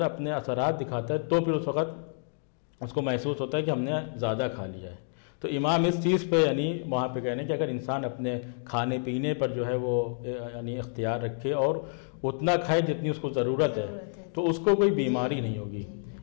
اپنے اثرات دکھاتا ہے تو پھر اس وقت اس کو محسوس ہوتا ہے کہ ہم نے زیادہ کھا لیا ہے۔ تو امام اس چیز پہ یعنی وہاں پہ کہنے کہ اگر انسان اپنے کھانے پینے پر جو ہے وہ یعنی اختیار رکھے اور اتنا کھائے جتنی اس کو ضرورت ہے تو اس کو کوئی بیماری نہیں ہوگی۔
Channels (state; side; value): silent; right; digital silence